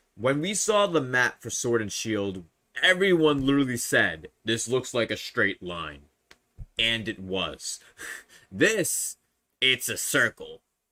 When we saw the map for Sword and Shield, everyone literally said, this looks like a straight line. And it was. This, it's a circle.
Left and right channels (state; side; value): identical; both; correlation 1.00